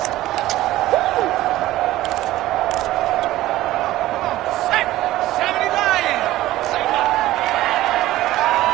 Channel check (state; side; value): quieter; left; 15.8 dB